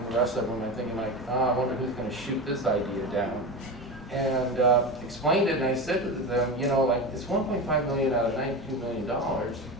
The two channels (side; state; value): both; normal; correlation 0.24